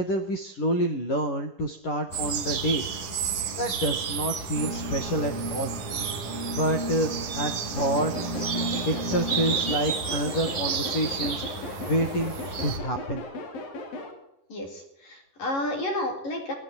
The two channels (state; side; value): late; right; 10 ms